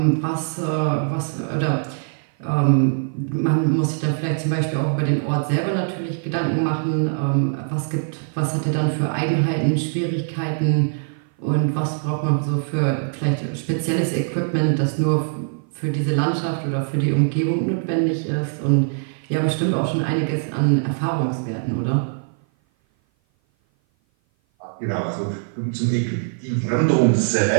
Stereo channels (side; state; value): left; silent; 56 dB below the other